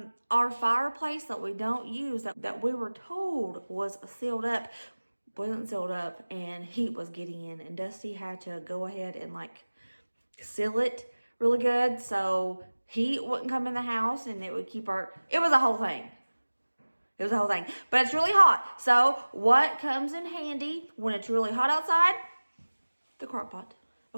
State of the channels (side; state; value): both; inverted; correlation -1.00